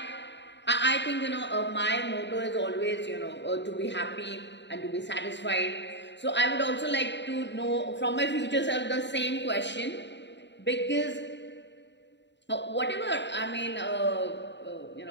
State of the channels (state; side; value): late; right; 0.52 ms